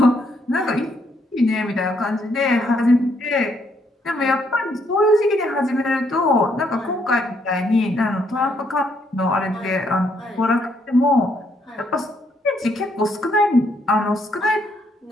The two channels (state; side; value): normal; both; correlation 0.72